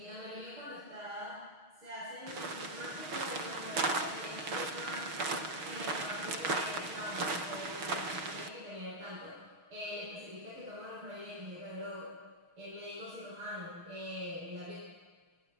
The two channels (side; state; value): left; late; 6.4 ms